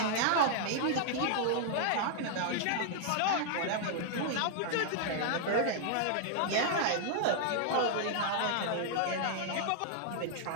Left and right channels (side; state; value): both; different; correlation -0.01